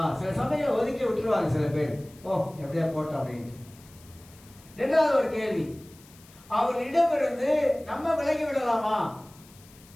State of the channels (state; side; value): noise; left; hiss, 25 dB below the sound